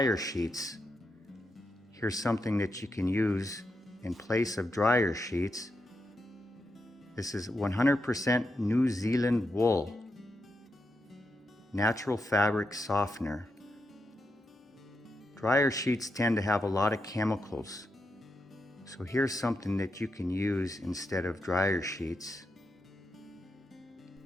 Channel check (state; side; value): normal; both; correlation 0.85